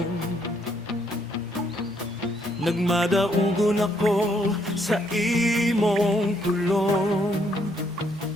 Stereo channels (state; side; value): normal; both; correlation 0.71